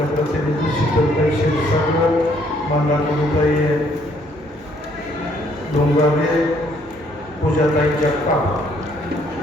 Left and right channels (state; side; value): normal; both; correlation 0.66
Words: प्रतिनिधी शीतलताई क्षीरसागर, मंदाकिनीताई डोंगावे, पूजाताई जगताप.